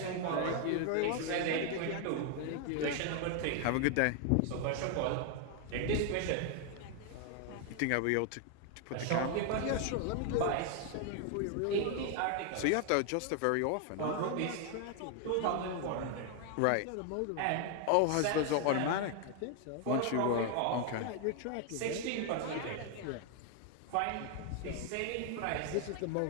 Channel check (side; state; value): both; different; correlation 0.00